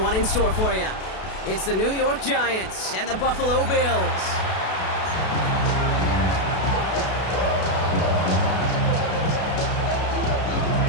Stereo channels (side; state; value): right; late; 32 ms